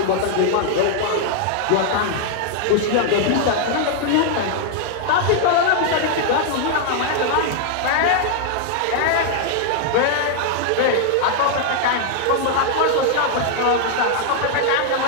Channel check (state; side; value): different; both; correlation 0.00